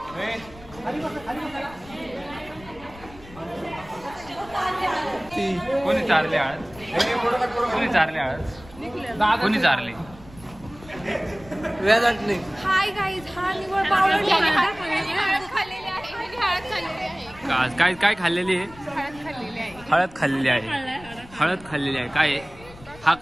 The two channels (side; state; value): left; noise; rumble, 20 dB below the sound